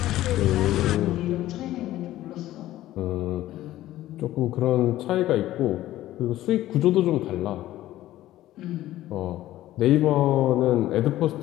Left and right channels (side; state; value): right; quieter; 14.6 dB